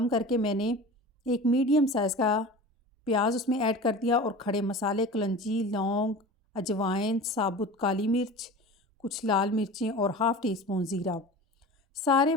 करके मैंने एक मीडियम साइज़ का प्याज उसमें ऐड कर दिया और खड़े मसाले कलंजी, लौंग, अजवाइन, साबुत काली मिर्च, कुछ लाल मिर्चें और हाफ़ टी स्पून ज़ीरा। सारे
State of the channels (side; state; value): both; normal; correlation 0.36